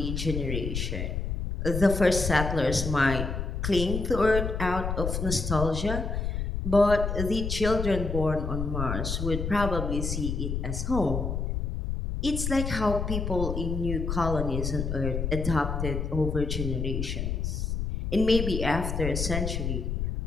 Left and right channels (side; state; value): left; noise; rumble, 2 dB below the sound